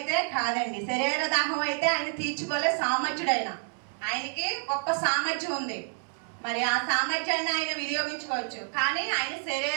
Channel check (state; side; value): silent; left; 56 dB below the other